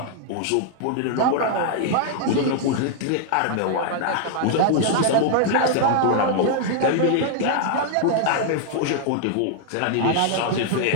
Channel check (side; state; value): both; different; correlation 0.00